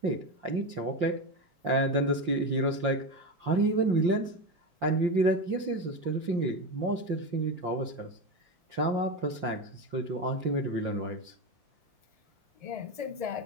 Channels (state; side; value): late; left; 5.7 ms